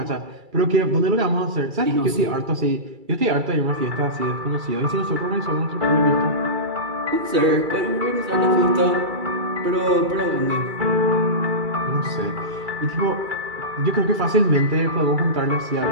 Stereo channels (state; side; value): late; left; 2.3 ms